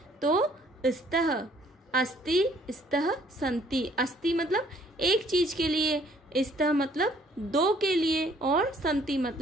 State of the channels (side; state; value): both; normal; correlation 0.61